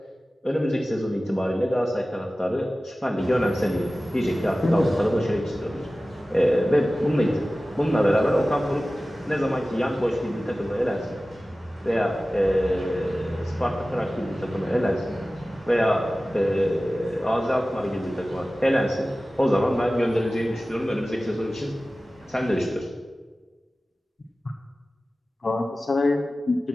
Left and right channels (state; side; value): normal; both; correlation 0.96